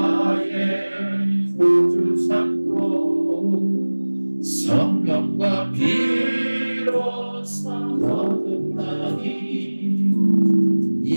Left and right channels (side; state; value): both; inverted; correlation -1.00